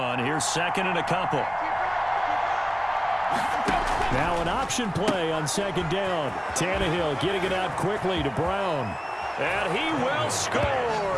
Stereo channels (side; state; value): both; identical; correlation 1.00